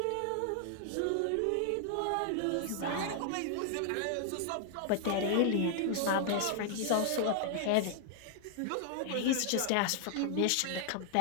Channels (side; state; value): both; different; correlation 0.00